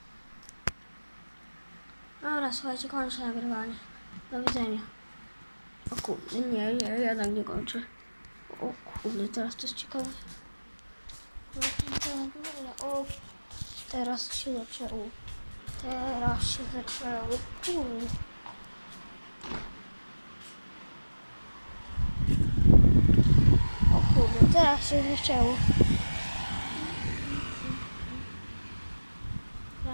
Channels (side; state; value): both; inverted; correlation -1.00